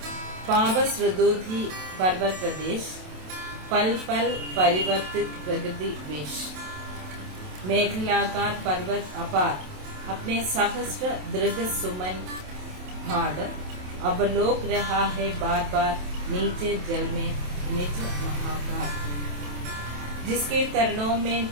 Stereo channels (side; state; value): left; late; 27 ms